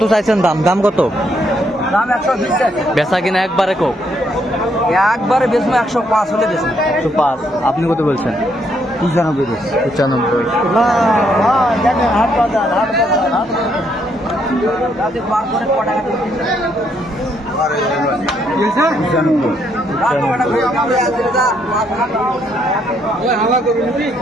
চাইছেন দাম? দাম কত? দাম 120 বেচা কিনা একবারে কো? একবারে বেচবো 105 হলে বেচবো। 105। আপনি কত বলছেন? 95 95।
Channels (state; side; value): normal; both; correlation 0.73